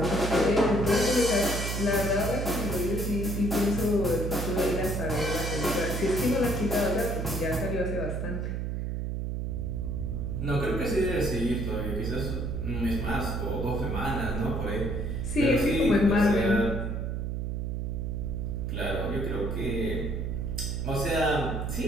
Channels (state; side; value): noise; right; hum, 2 dB below the sound